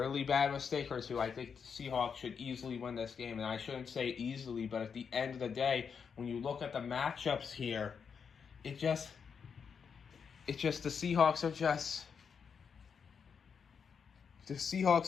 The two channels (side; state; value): right; quieter; 6.4 dB